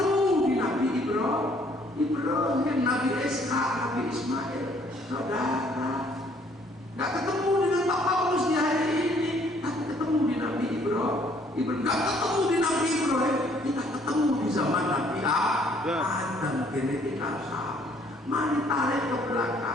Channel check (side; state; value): both; normal; correlation 0.63